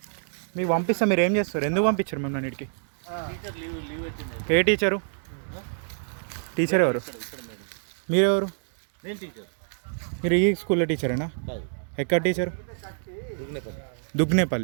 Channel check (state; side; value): silent; left; digital silence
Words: మీకు పంపిస్తా, మీరు ఏం చేస్తారు? ఎందుకు పంపించారు మిమ్మల్ని ఇంటికి? టీచర్ లీవ్ పెట్టిండు. ఏ టీచరు? టీచర్ ఎవరు? ఇక్కడ మేడం. మీరెవరు? నేను టీచర్ మీరు ఈ స్కూల్లో టీచరేనా? కాదు, ఎక్కడ టీచరు? దుగ్నేపల్లి.